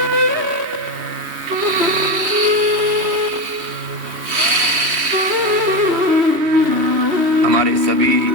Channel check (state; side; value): late; left; 3.1 ms